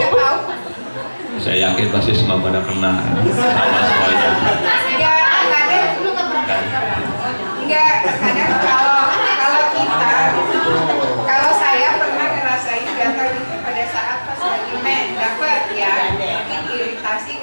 Saya yakin pasti semua pada kena sama semuanya. Nggak ada. enggak, kadang kalau kita, kalau saya pernah ngerasain gatal itu pada saat pas lagi dapat ya, mungkin iritasi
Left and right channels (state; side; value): inverted; both; correlation -1.00